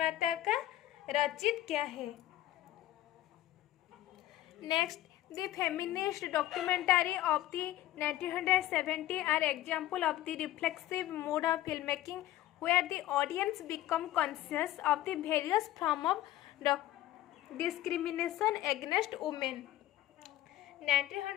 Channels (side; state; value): right; quieter; 14.5 dB